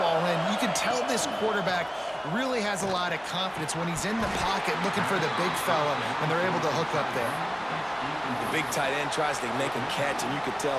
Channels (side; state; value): both; identical; correlation 1.00